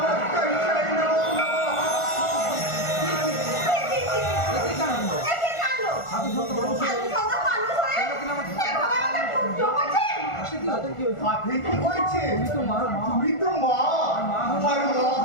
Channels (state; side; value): late; right; 1.4 ms